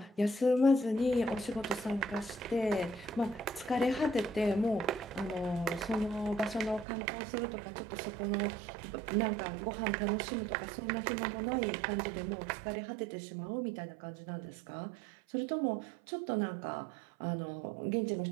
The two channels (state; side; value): drops out; left; at 6.9 s